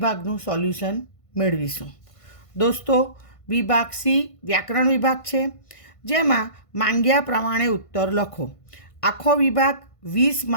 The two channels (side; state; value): right; late; 1.5 ms